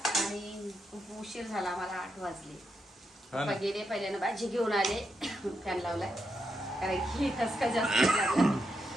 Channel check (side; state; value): both; normal; correlation 0.83